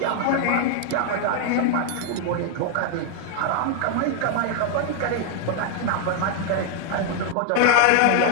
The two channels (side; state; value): both; different; correlation 0.00